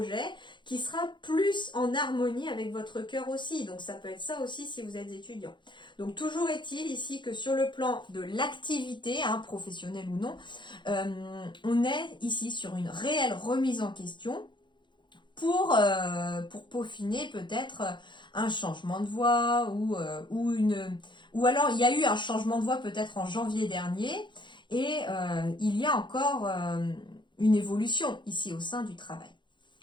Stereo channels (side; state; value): right; late; 0.23 ms